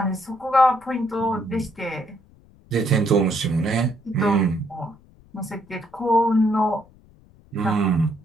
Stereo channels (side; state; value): left; noise; rumble, 27 dB below the sound